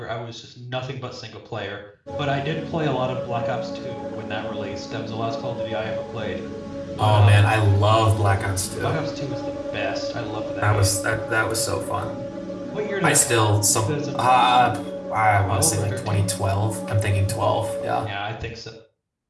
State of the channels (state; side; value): identical; both; correlation 1.00